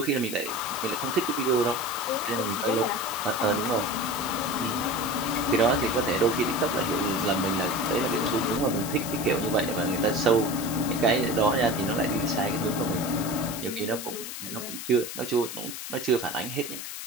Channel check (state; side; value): noise; left; hiss, 8 dB below the sound